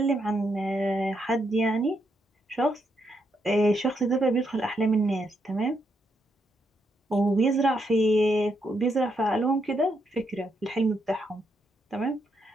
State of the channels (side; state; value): both; normal; correlation 0.79